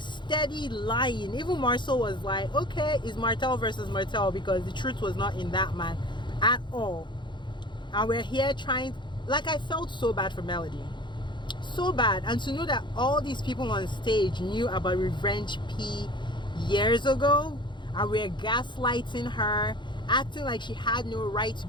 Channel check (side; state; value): right; late; 0.23 ms